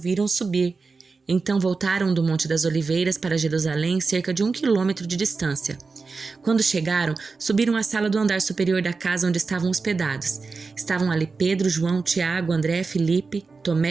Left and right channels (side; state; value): left; quieter; 4.4 dB